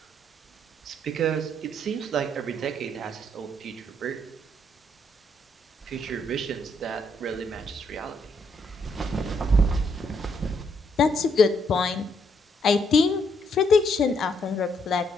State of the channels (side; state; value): both; normal; correlation 0.73